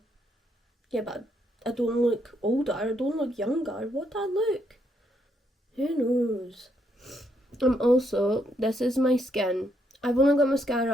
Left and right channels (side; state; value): both; normal; correlation 0.75